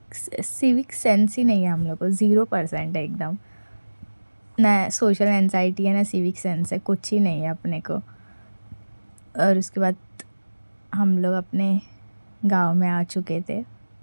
सेंस ही नहीं है हम लोग को, 0% है एकदम। ना सोशल एंजाइटी है ना सिविक सेंस है, कुछ ही नहीं है अपने को। और उसके बाद हम लोग अपने गांव में आ चुके थे,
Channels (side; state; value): both; inverted; correlation -1.00